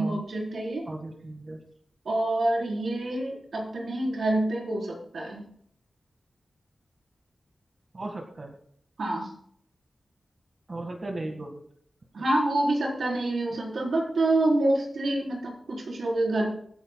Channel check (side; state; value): both; normal; correlation 0.92